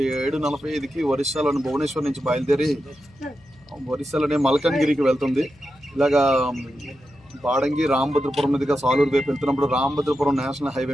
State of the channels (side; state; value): left; noise; hum, 28 dB below the sound